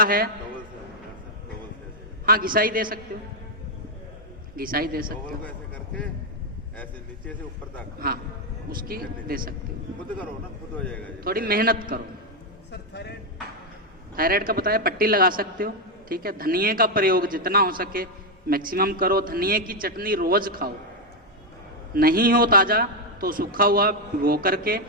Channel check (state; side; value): normal; both; correlation 0.03